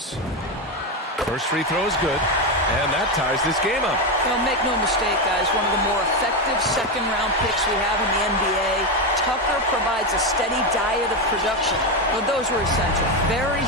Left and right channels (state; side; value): normal; both; correlation 0.11